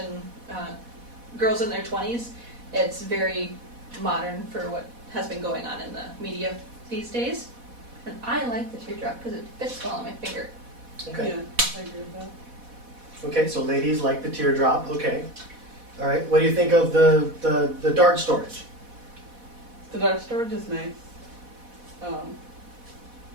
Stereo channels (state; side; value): late; left; 4.1 ms